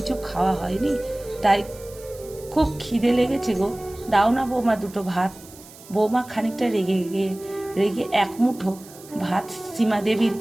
খাওয়া হয়নি, তাই খুব খিদে লেগেছে গো। দাও না বৌমা দুটো ভাত। বৌমা খানিকটা রেগে এক মুঠো ভাত সীমাদেবীর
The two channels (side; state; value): right; noise; hiss, 20 dB below the sound